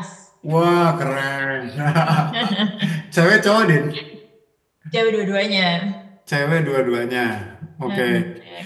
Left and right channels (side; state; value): both; identical; correlation 1.00